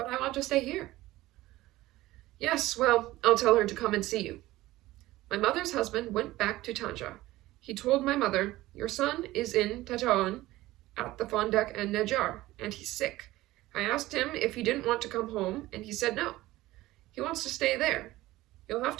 I want to stay here." "Yes, well, I'll tell her to come and see you." My mother's husband went back to Tanja. He told my mother, "Your son is in Tetoan at the Fondak and Najjar, and he's sick. I asked him if he didn't want to come home, and he said no. He wants to stay there. You'll have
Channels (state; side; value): quieter; left; 17.3 dB